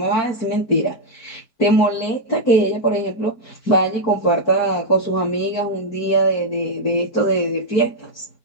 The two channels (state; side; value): late; right; 4.6 ms